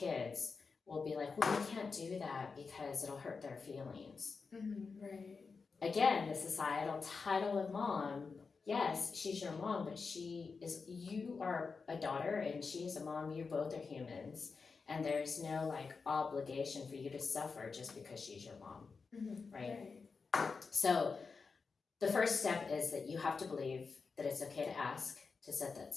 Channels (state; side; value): quieter; right; 4.8 dB